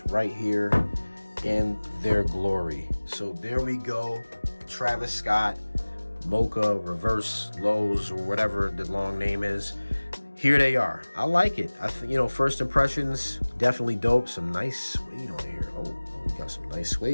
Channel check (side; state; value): both; inverted; correlation -1.00